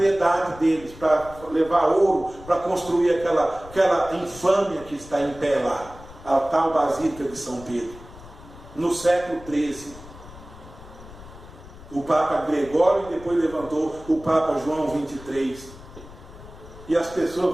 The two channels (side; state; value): left; noise; rumble, 18 dB below the sound